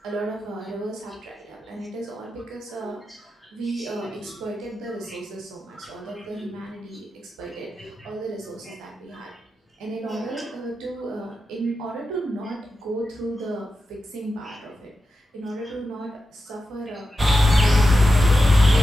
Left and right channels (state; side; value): normal; both; correlation 0.90